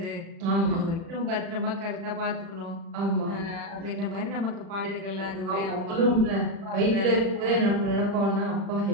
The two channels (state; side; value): late; left; 36 ms